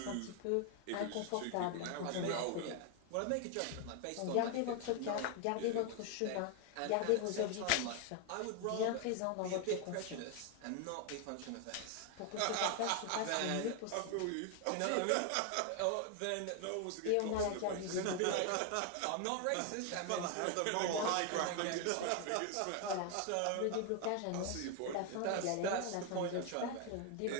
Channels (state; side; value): different; both; correlation 0.01